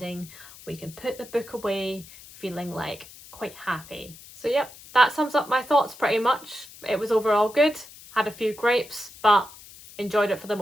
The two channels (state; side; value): noise; left; hiss, 19 dB below the sound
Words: we can put the book away feeling like quite happy. So yep, that sums up my thoughts pretty much. It was overall good, had a few gripes, but enjoyed it for the